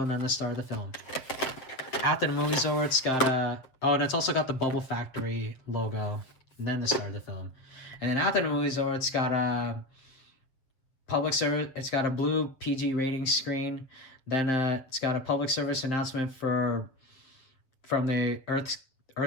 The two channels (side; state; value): right; late; 7.3 ms